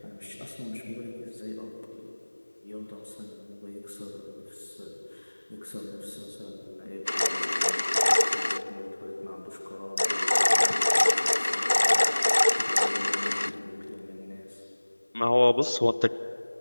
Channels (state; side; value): inverted; both; correlation -1.00